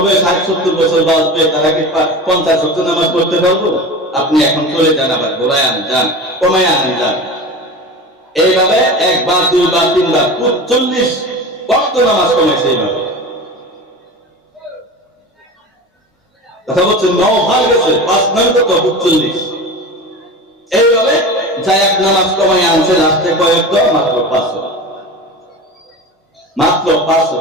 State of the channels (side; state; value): both; normal; correlation 0.31